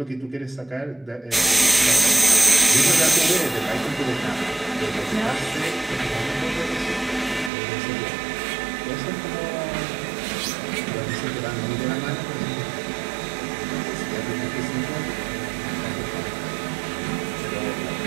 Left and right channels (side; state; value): left; drops out; at 7.5 s